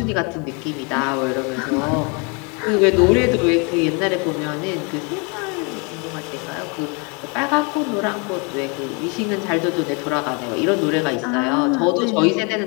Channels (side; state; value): right; quieter; 32.6 dB